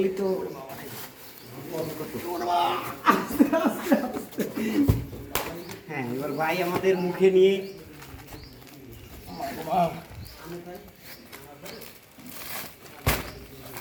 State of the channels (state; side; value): identical; both; correlation 1.00